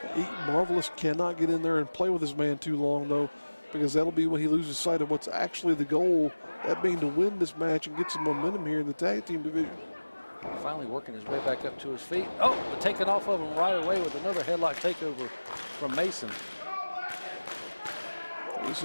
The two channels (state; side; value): inverted; both; correlation -1.00